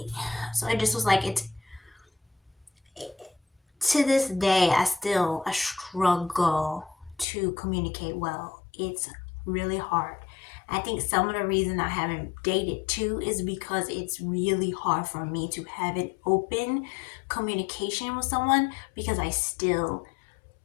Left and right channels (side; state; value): right; drops out; at 7.2 s